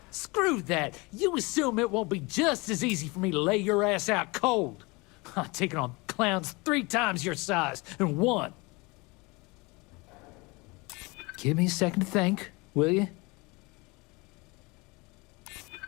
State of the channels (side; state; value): right; quieter; 25.9 dB